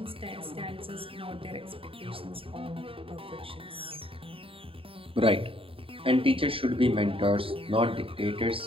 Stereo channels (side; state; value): left; late; 0.26 ms